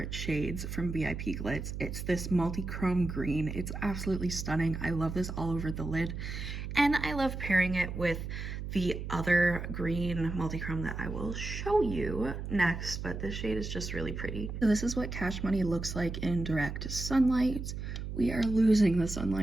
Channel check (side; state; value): right; noise; hum, 6 dB below the sound